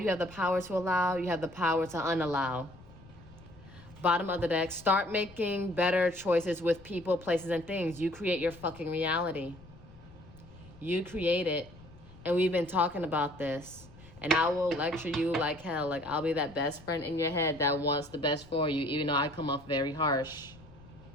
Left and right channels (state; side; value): noise; left; rumble, 21 dB below the sound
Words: have the power to allow, you have the power to unallow. Bottom of the deck, start making better choices with people, places, and things. You create your fucking reality. You create it. And we've been talking about this. And I will lecture you like hell. Like, I'll be that best friend in your head that wants the best for you, even though I come off very harsh.